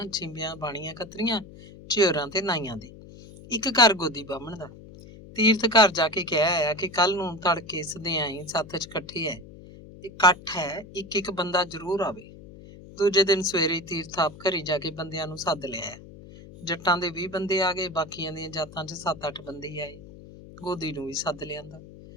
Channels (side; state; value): left; noise; hum, 18 dB below the sound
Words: ਛਿੰਬੀਆਂ, ਬਾਣੀਆਂ, ਕਤਰੀਆਂ, ਝਿਉਰਾਂ ਤੇ ਨਾਈਆਂ ਦੇ, ਇੱਕ ਘਰ ਗੋਦੀ ਬਾਹਮਣ ਦਾ। ਤੀਰਥ ਘਰ ਜਾ ਕੇ ਕਹਿ ਆਇਆ ਕਿ ਕੱਲ ਨੂੰ ਤੜਕੇ ਸਦਿਆਈ ਸੱਥ 'ਚ ਇਕੱਠ ਹੈ, ਇੱਕ ਬੰਦਾ ਜ਼ਰੂਰ ਆਵੇ। ਦੂਜੇ ਦਿਨ ਸਵੇਰੇ ਤੀਰਥ ਆਪ ਘਰੀ ਜਾ ਕੇ ਬੰਦਿਆਂ ਨੂੰ ਸੱਦ ਲਿਆਇਆ। ਜੱਟਾਂ ਦੇ 20 ਬੰਦੇ ਆ ਗਏ, ਬਾਕੀਆਂ ਦੀਆਂ ਜਾਤਾਂ 'ਚ 7-8 ਬੰਦੇ ਆਏ। ਗੋਦੀ ਨੂੰ ਵੀ ਸੱਦ ਲਿਆਂਦਾ।